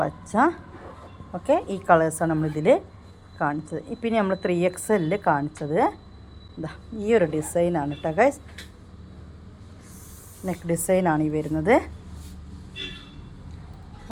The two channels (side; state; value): both; identical; correlation 1.00